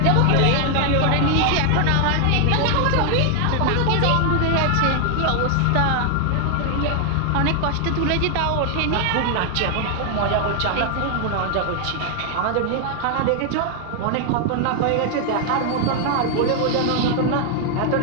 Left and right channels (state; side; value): different; both; correlation 0.00